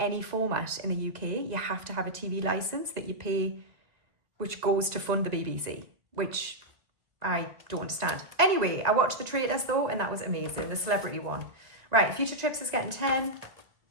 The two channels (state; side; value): late; left; 2.0 ms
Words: format in the UK, you have to have a TV license that you pay, which goes to fund the BBC, which I don't understand. Anyway, I watched The Traders though, and that was amazing, the celebrity one. Right, Future Trips is getting 10.